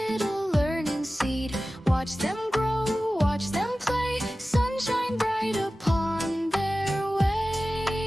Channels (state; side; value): normal; both; correlation 0.96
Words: learning seed. Watch them grow, watch them play, sunshine bright upon their